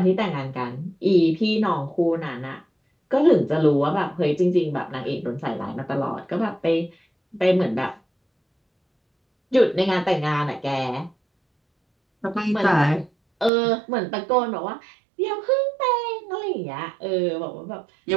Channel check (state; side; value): drops out; left; at 13.5 s